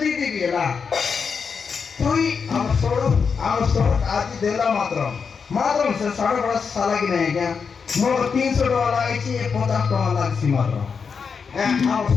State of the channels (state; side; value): quieter; right; 5.8 dB